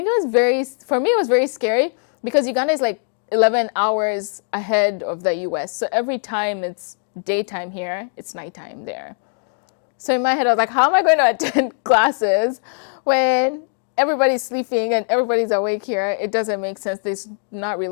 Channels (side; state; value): right; silent; 62 dB below the other